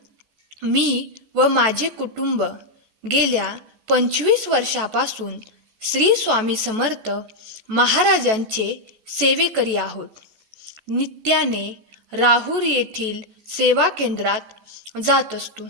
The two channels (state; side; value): late; left; 14 ms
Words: मी व माझे कुटुंब गेल्या 25 वर्षापासून श्री स्वामी समर्थ महाराजांचे सेवेकरी आहोत. नित्याने राहुरी येथील सेवा केंद्रात जात असतो.